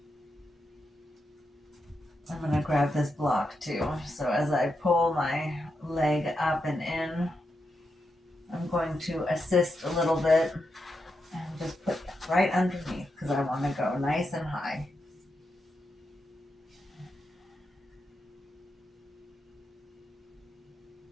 I'm going to grab this block too. So as I pull my leg up and in, I'm going to assist a little bit and just put that right underneath because I want to go nice and high.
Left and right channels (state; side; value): normal; both; correlation 0.85